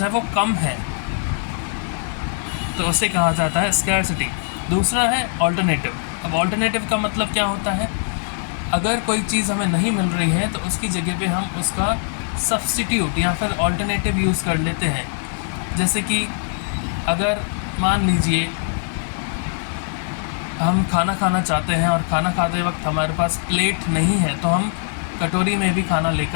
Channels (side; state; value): right; silent; digital silence